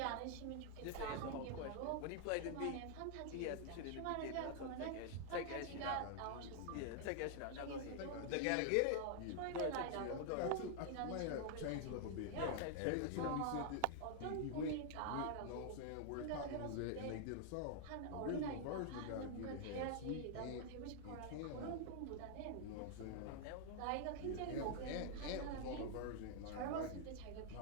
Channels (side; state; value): both; different; correlation 0.00